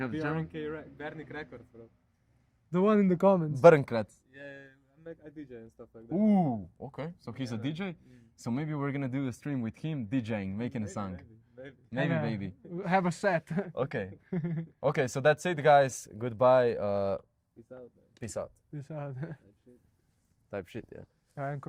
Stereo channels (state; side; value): identical; both; correlation 1.00